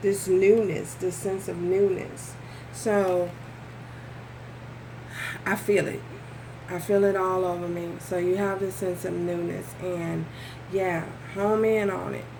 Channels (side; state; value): both; identical; correlation 1.00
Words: newness, this sense of newness. So I feel it. I feel it all over me. So you have this sense of newness, and yeah, home in on it.